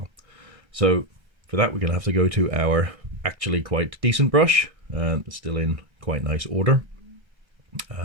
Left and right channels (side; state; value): left; late; 1.3 ms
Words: So for that we're going to have to go to our actually quite decent brush, and it's still in quite nice order.